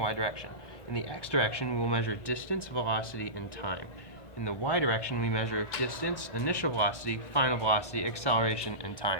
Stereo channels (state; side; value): late; right; 1.1 ms